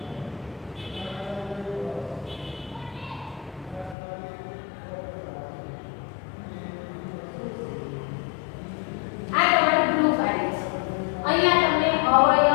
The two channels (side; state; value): right; drops out; at 4.0 s